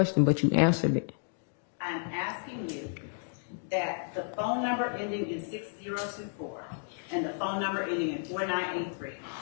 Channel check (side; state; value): right; silent; digital silence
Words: but you answered it. I'm asking you that the phone number ending in 6024 and the phone number ending in 4983